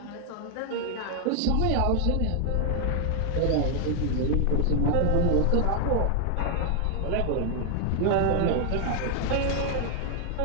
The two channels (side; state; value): both; different; correlation 0.00